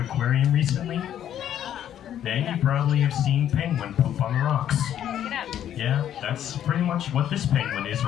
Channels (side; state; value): right; quieter; 10.6 dB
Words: Aquarium recently? Then you probably have seen penguin poop on the rocks. Yeah, that's pretty much what this penguin is